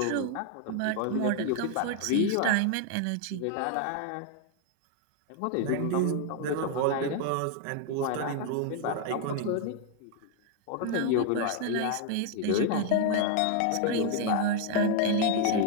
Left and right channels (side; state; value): both; different; correlation 0.00